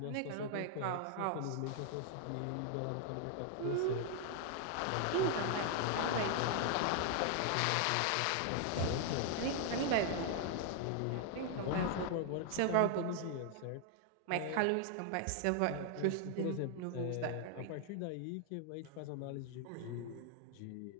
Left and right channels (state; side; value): different; both; correlation 0.00